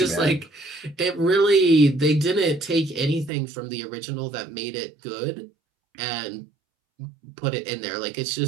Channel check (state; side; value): drops out; left; at 3.3 s